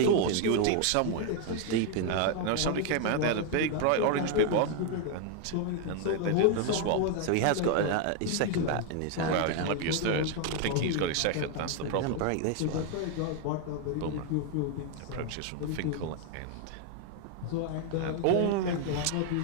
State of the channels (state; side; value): different; both; correlation 0.01